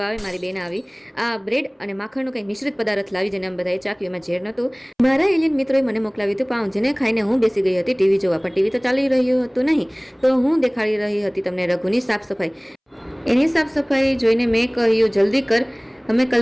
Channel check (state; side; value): identical; both; correlation 1.00